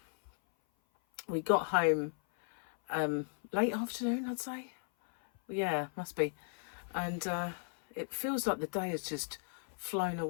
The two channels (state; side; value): silent; right; 54 dB below the other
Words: we got home late afternoon, I'd say. Yeah, must be. And it feels like the day has just flown